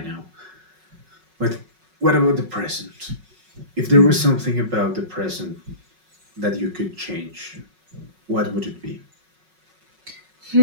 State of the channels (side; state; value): left; late; 5.4 ms